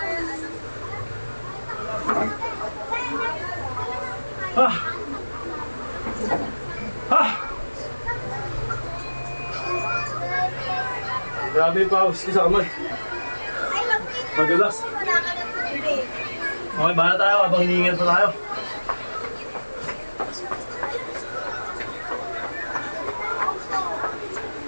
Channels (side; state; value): both; inverted; correlation -1.00